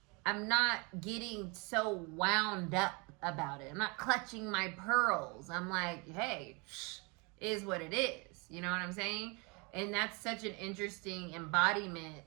not getting so wound up about it. I'm not clutching my pearls. I'm like, hey, is what it is. You know what I'm saying? And that's such an interesting embodiment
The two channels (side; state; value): left; quieter; 30.2 dB